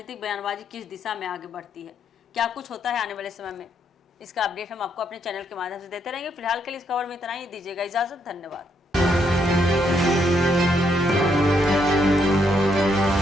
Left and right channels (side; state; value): both; normal; correlation 0.75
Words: बयानबाजी किस दिशा में आगे बढ़ती है, क्या कुछ होता है आने वाले समय में। इसका अपडेट हम आपको अपने चैनल के माध्यम से देते रहेंगे। फिलहाल के लिए इस खबर में इतना ही। दीजिएगा इजाजत। धन्यवाद।